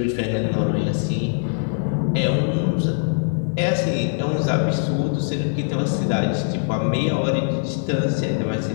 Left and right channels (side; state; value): right; silent; 64 dB below the other